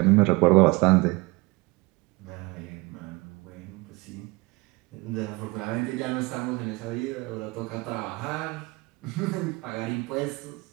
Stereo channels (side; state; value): left; quieter; 24.4 dB